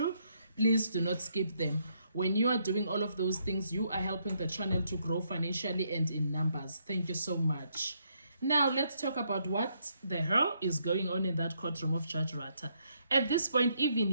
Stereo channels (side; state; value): both; inverted; correlation -0.74